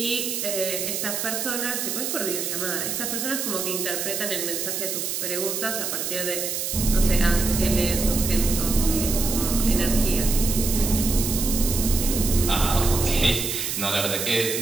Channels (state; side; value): noise; right; hiss, 2 dB below the sound